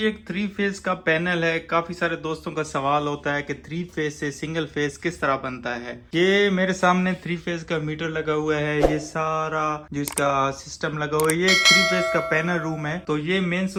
एक 3 फेज का पैनल है। काफी सारे दोस्तों का सवाल होता है कि 3 फेज से सिंगल फेज किस तरह बनता है। ये मेरे सामने 3 फेज का मीटर लगा हुआ है। ये सारा जो इसका सिस्टम लगा हुआ है, ये एक 3 फेज का पैनल रूम है। तो ये मेन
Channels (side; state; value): both; identical; correlation 1.00